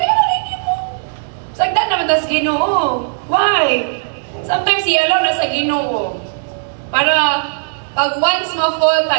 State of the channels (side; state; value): left; silent; digital silence